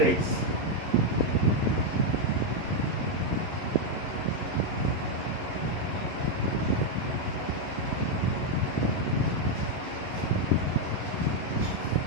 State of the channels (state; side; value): late; left; 11 ms